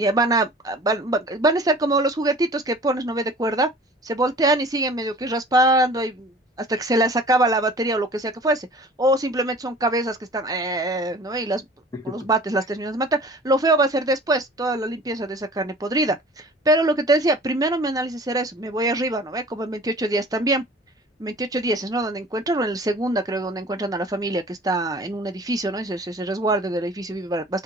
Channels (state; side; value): normal; both; correlation 0.45